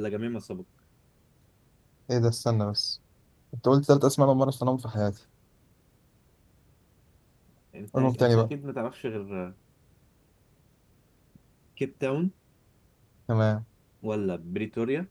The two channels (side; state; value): both; identical; correlation 1.00